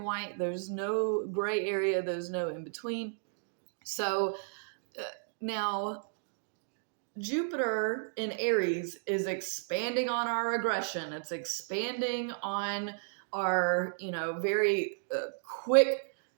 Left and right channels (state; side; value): silent; left; digital silence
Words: white. There's no gray area. There's no in between. So now Jupiter in Aries is expanding on our aggression. It's expanding on our, very quick